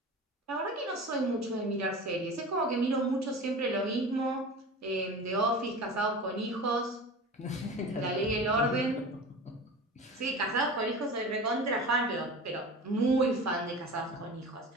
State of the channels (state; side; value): normal; both; correlation 0.33